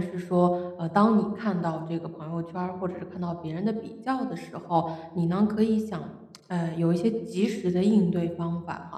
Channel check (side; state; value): both; identical; correlation 1.00